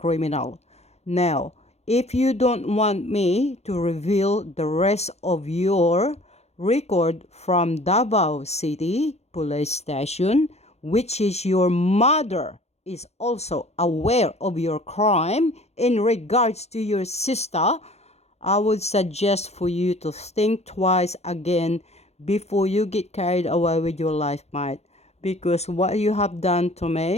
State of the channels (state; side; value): late; right; 0.31 ms